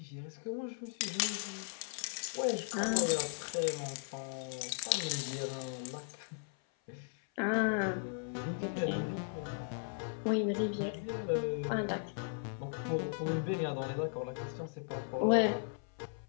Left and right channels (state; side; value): silent; right; 53 dB below the other